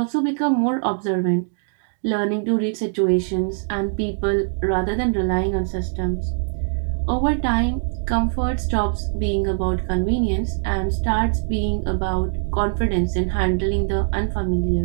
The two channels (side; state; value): left; silent; digital silence